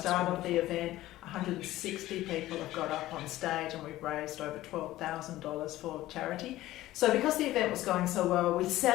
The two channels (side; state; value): right; quieter; 15.8 dB